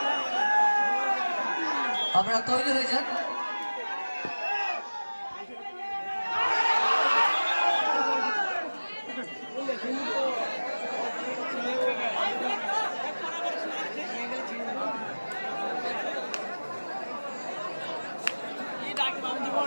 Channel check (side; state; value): both; inverted; correlation -1.00